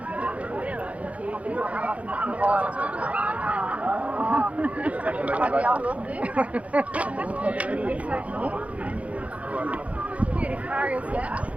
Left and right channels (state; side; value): late; left; 0.066 ms